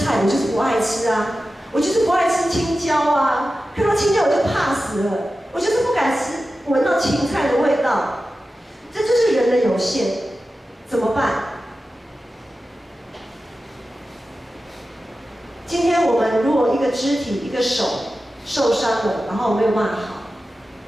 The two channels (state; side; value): normal; both; correlation 0.93